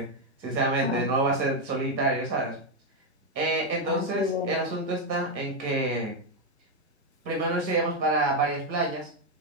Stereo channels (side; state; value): left; late; 1.5 ms